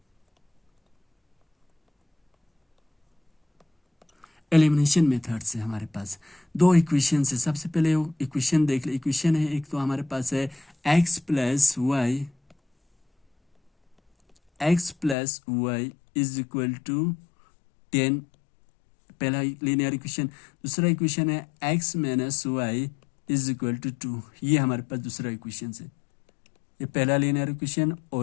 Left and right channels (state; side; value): drops out; right; at 15.2 s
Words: elimination method से हमारे पास दो इक्वेशन है। सबसे पहले इक्वेशन देख ले। इक्वेशन है एक, तो हमारे पास है x plus Y is equal to 10, पहला लीनियर इक्वेशन। दूसरा इक्वेशन है x minus y is equal to 2। ये हमारे पास दूसरा इक्वेशन है। ये पहला लीनियर इक्वेशन